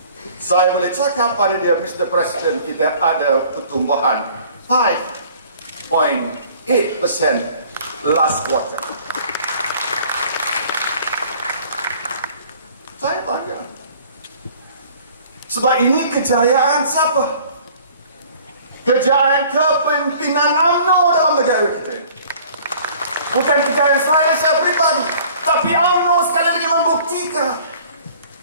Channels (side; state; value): both; inverted; correlation -0.52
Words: saya boleh cakap pada dia, Mr. President, kita ada pertumbuhan 5.8% last quarter. Saya bangga. Sebab ini kejayaan siapa? Kejayaan kepimpinan UMNO dalam negara kita. Bukan kejayaan saya pribadi, tapi UMNO sekali lagi membuktikan